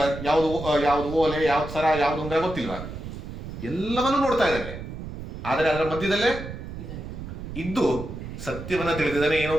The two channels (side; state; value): right; noise; rumble, 9 dB below the sound